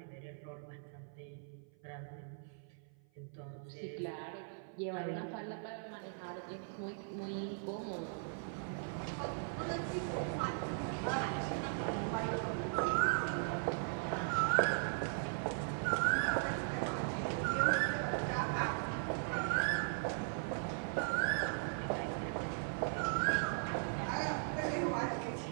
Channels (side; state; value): left; silent; 52 dB below the other